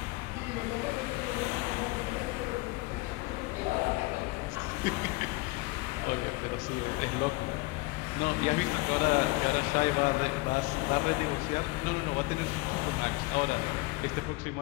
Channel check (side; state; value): right; quieter; 22.7 dB